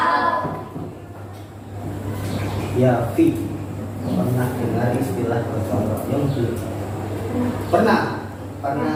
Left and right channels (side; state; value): both; identical; correlation 1.00